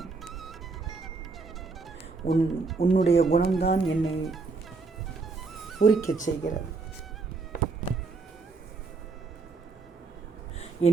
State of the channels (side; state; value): left; quieter; 4.1 dB